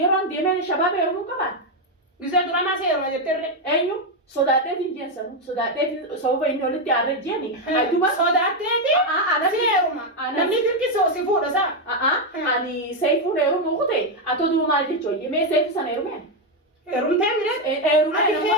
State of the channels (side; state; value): both; normal; correlation 0.05